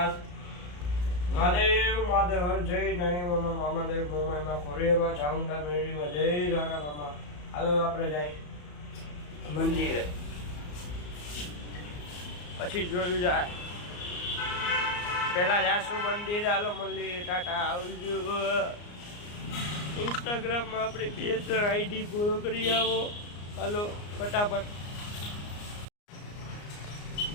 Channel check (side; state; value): right; late; 34 ms